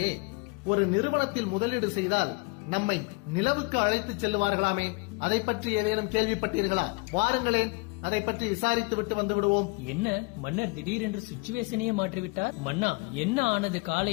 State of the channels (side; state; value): right; quieter; 29.2 dB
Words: ஒரு நிறுவனத்தில் முதலீடு செய்தால் நம்மை நிலவுக்கு அழைத்து செல்லுவார்களாமே, அதை பற்றி ஏதேனும் கேள்விப்பட்டீர்களா? வாருங்களேன், அதை பற்றி விசாரித்து விட்டு வந்து விடுவோம். என்ன மன்னர் திடீரென்று சிச்சுவேஷனையே மாற்றிவிட்டார்? மன்னா, என்ன ஆனது